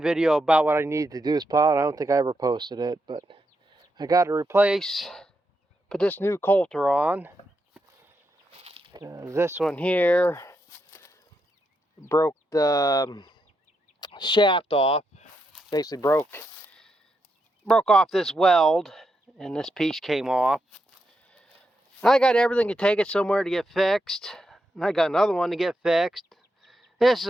video about what I needed to do this plow, and I don't think I ever posted it, but I got to put this new coulter on. This one here broke the shaft off, basically broke off this weld, and this piece came off. I got everything to take it somewhere to get fixed, and I got another one to get fixed. This is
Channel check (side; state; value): both; normal; correlation 0.83